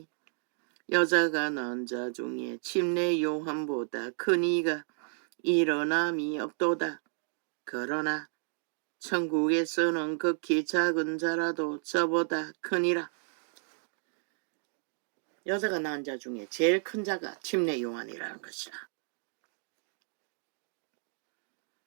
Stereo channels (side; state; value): left; silent; 56 dB below the other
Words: 여자가 낳은 자 중에 침례 요한보다 큰 이가 일어남이 없도다. 그러나 천국에서는 극히 작은 자라도 저보다 크니라. 여자가 낳은 자 중에 제일 큰 자가 침례 요한이라는 것이라.